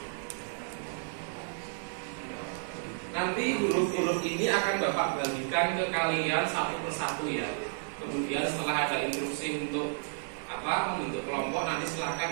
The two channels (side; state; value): left; silent; digital silence